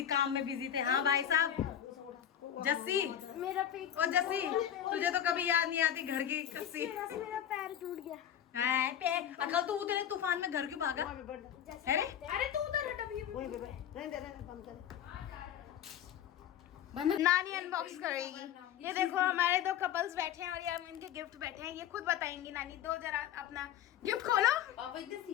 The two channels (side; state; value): right; quieter; 10.2 dB